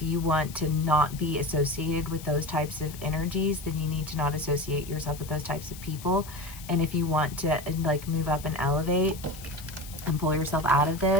you want to not be associated with those types of energies, then you need to not associate yourself with those types of people. And if you want to like move up and elevate and pull yourself out of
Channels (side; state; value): left; noise; hiss, 16 dB below the sound